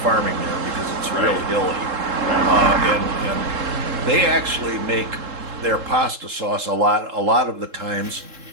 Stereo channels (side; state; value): left; late; 3.7 ms